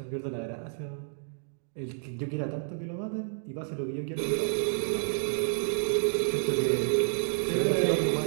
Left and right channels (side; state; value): left; silent; digital silence